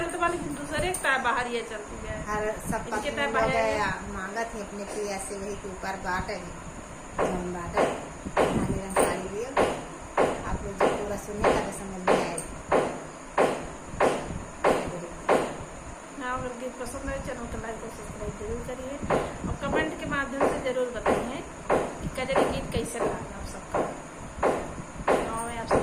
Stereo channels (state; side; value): identical; both; correlation 1.00